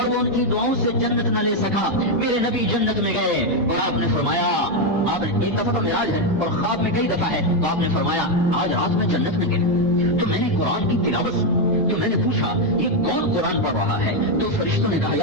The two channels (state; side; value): normal; both; correlation 0.04